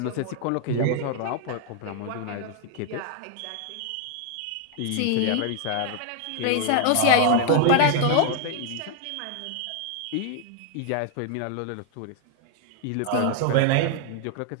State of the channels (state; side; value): different; both; correlation 0.00